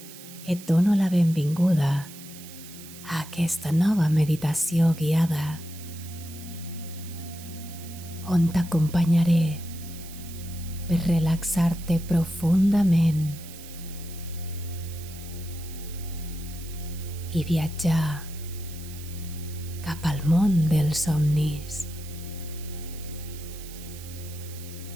Et dono la benvinguda a aquesta nova meditació guiada on t'acompanyaré per relaxar-te profundament i viatjar cap al món dels somnis.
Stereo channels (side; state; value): right; noise; hiss, 16 dB below the sound